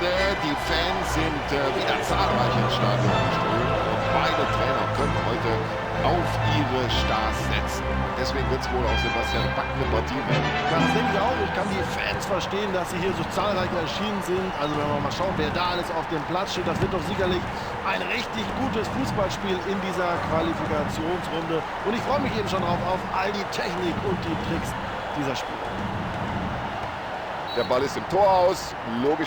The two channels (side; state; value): both; identical; correlation 1.00